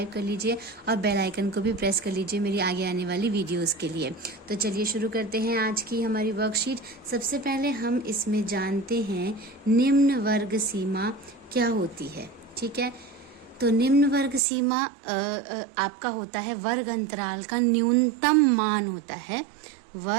कर लीजिए और बेल आइकन को भी प्रेस कर लीजिए मेरी आगे आने वाली वीडियोस के लिए। तो चलिए शुरू करते हैं आज की हमारी वर्कशीट। सबसे पहले हम इसमें जानते हैं निम्न वर्ग सीमा क्या होती है। ठीक है, तो निम्न वर्ग सीमा आपका होता है वर्ग अंतराल का न्यूनतम मान होता है।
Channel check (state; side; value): drops out; left; at 14.4 s